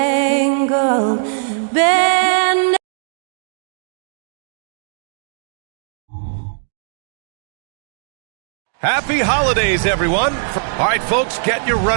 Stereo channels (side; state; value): left; silent; digital silence